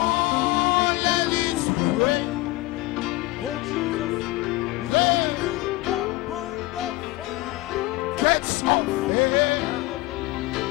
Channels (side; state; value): right; quieter; 19.7 dB